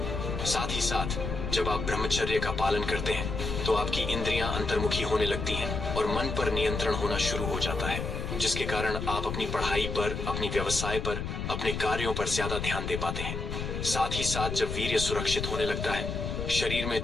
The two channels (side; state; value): left; noise; rumble, 4 dB below the sound